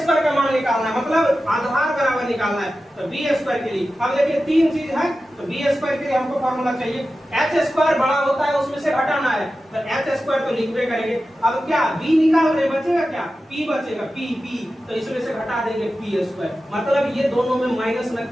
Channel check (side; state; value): both; normal; correlation 0.93